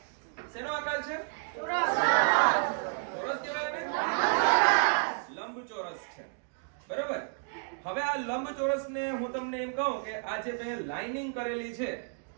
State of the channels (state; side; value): silent; left; digital silence